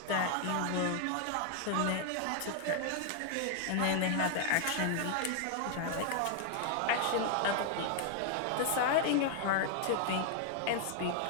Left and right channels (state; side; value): different; both; correlation 0.00